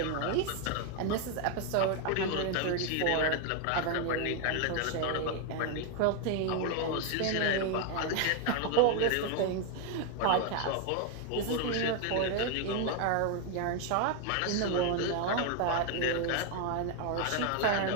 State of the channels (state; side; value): different; both; correlation 0.01